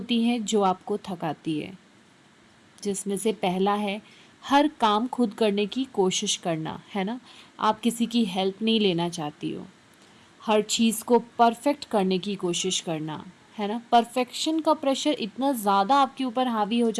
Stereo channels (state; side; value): identical; both; correlation 1.00